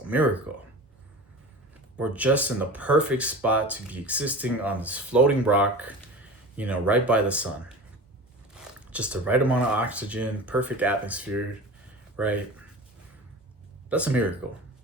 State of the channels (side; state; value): both; normal; correlation 0.34